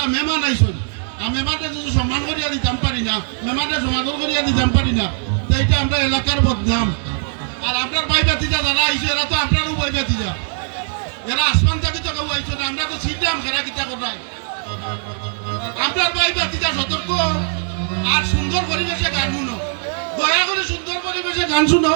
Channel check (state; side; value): silent; left; 66 dB below the other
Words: মেহমান আইসই, আর মেহমানটা যদি সম্মান করিয়া দিতাম পারি না, মেহমানটা সমাদর করিয়া দিতাম পারি না, তো এইটা আমরা এলাকার বদনাম। আর আপনার ভাই বাতিজা যারা আইসে এরা তো আপনারও ভাই বাতিজা, এরা আসমান থেকে তো কেউ আইসো না, আমরা তো ছিলাম খেলা কিতা করাই। আপনার ভাই বাতিজা সতর্ক, আর সুন্দর পরিবেশে গান শুনো, দয়া করে সুন্দর পরিবেশে গান শুনো।